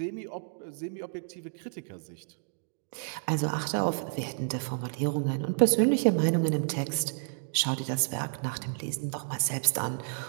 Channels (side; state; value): left; silent; digital silence